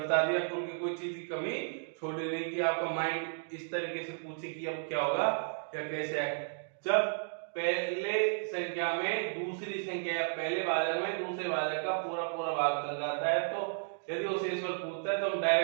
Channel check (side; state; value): left; silent; digital silence